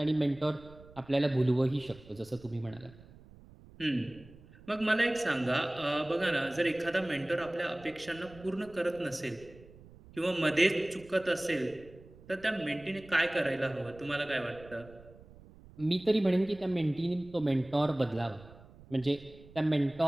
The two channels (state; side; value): noise; right; rumble, 21 dB below the sound